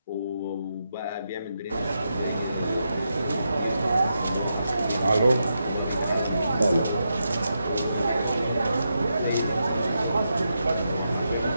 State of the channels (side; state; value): both; inverted; correlation -0.85